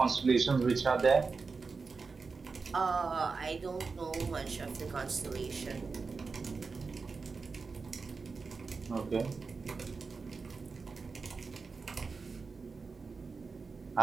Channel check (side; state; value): left; quieter; 4.6 dB